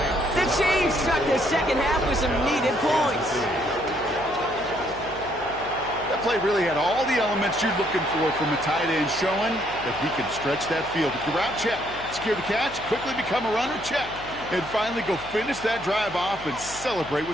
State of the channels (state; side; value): noise; left; hum, 16 dB below the sound